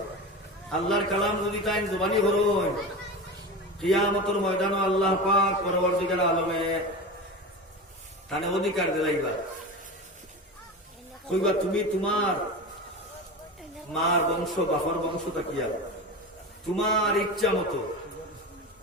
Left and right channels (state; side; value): normal; both; correlation 0.27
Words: আল্লাহর কালাম যদি তাই জবানি হরণ কিয়ামতের ময়দানও আল্লাহ পাক পরবর্তীকার আলমে তানে অধিকার দিলাইবা। কইবা তুমি তোমার মার বংশ বাপর বংশ তাকিয়া তোমার ইচ্ছা মতো